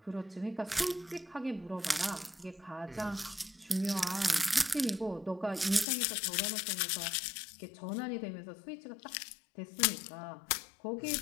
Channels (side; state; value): right; drops out; at 5.9 s